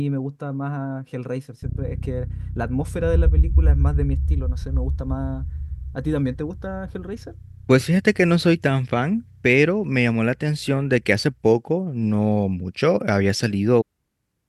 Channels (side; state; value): both; identical; correlation 1.00